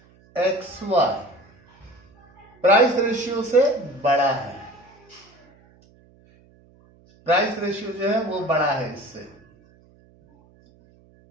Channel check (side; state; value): right; noise; hum, 29 dB below the sound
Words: X Y price ratio से बड़ा है। प्राइस रेशियो जो है वो बड़ा है इससे।